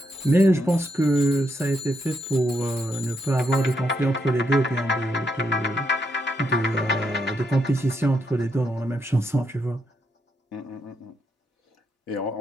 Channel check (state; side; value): normal; both; correlation 0.79